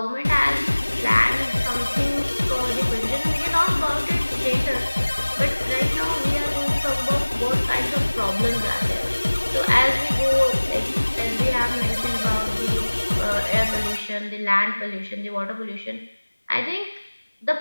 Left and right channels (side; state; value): both; inverted; correlation -1.00